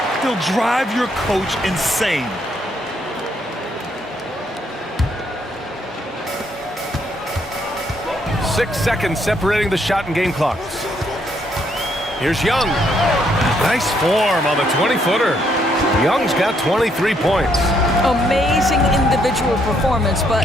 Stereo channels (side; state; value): both; normal; correlation 0.72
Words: They'll drive your coach insane. Six seconds separating the shot and game clocks. Here's Young. Nice form on the 20-footer. Young's got 23 points. Amazing individual performance,